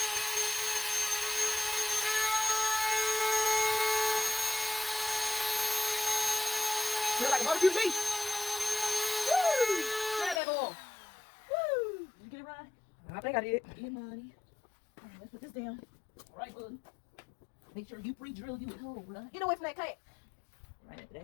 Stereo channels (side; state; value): right; drops out; at 10.4 s